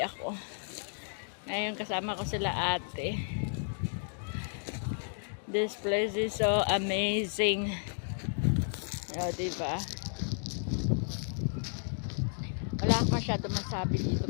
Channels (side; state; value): right; silent; digital silence